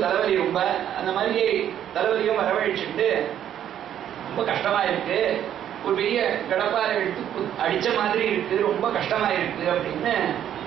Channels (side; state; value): left; quieter; 10.4 dB